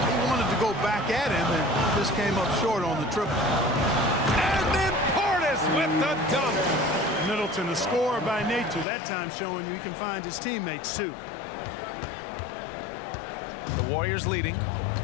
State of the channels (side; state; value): right; drops out; at 8.8 s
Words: he wanted to go back at him and just came up short on the triple. And then Portis with the dunk. Middleton, a scorer by nature, that time showing you he can find his teammates too. The Warriors leading.